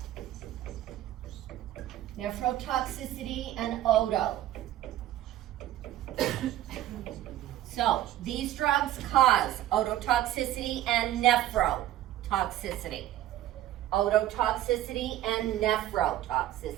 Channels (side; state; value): left; quieter; 13.6 dB